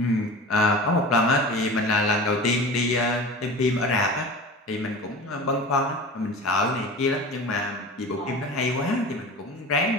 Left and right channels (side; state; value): both; normal; correlation 0.34